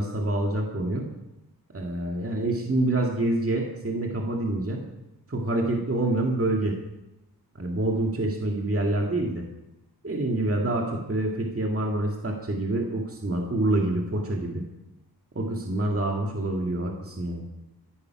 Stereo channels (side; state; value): both; normal; correlation 0.53